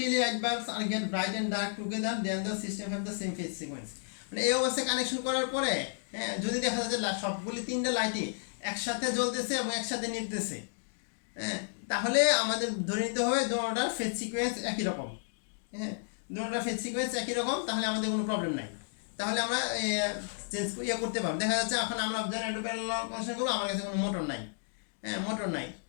light bulbs are get bright and dark together then the system have the same phase sequence, মানে এই অবস্থায় কানেকশন করার পরে, হ্যাঁ, যদি দেখা যায় যে সবগুলি 3টা লাইটই একসাথে জ্বলতেছে এবং একসাথে নিভতেছে, হ্যাঁ, তাহলে আমাদের ধরে নিতে হবে দুটোটার ফেজ সিকোয়েন্স একই রকম, হ্যাঁ, দুটোটার ফেজ সিকোয়েন্স একই রকম, তাহলে আমাদের কোনো প্রবলেম নাই, তাহলে আমরা চেঞ্জ করতে পারবো। দেখা যাচ্ছে এখন আমরা জেনারেটর প্যারালাল কানেকশন করবো, আমার কাছে কোনো মোটর নাই, হ্যাঁ, মোটর নাই,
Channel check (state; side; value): silent; right; digital silence